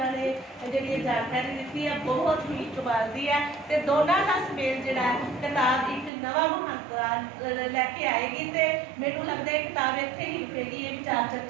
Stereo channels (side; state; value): left; drops out; at 6.1 s